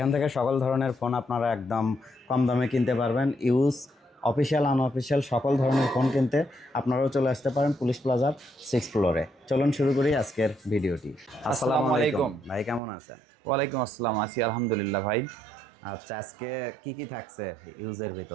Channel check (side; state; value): left; drops out; at 12.8 s